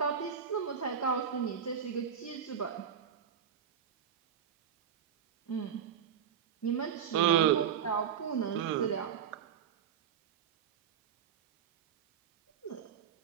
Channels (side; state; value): left; quieter; 8.1 dB